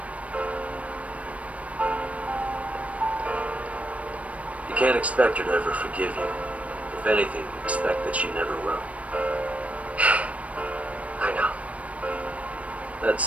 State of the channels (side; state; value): left; late; 0.065 ms